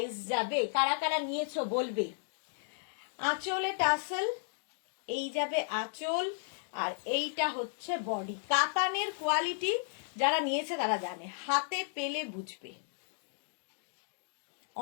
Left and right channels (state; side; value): silent; right; digital silence